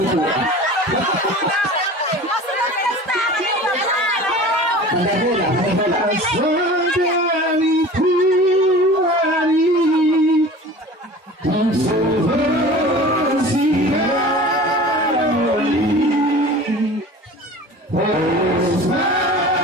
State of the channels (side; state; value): both; normal; correlation 0.39